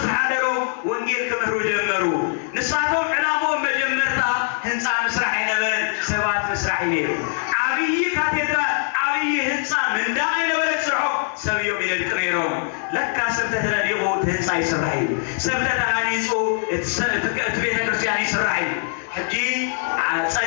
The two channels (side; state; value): right; silent; 64 dB below the other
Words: ህንፃ ምስራሕ አይነበረን ሰባት ምስራሕ ነይሩ ዓብይ ካቴድራል ዓብይ ህንፃ ምንዳቅ አይነበረን ስርሖ ሰብዮም ይደልቅ ነይሮም ለካ ሰብ ተተለዲቑ ህንፃ ይስራሕ እዩ ሰብ ተተሃኒፁ እቲ ቤተ ክርስቲያን ይስራሕ እዩ ሕጂ